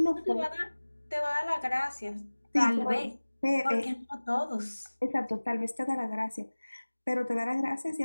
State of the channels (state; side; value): inverted; both; correlation -1.00